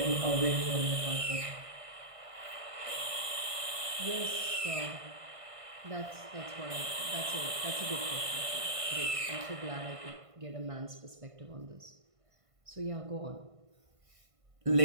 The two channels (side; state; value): left; late; 1.5 ms